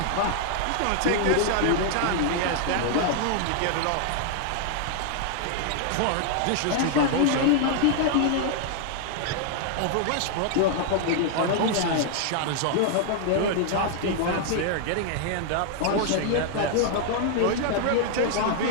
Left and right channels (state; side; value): different; both; correlation 0.00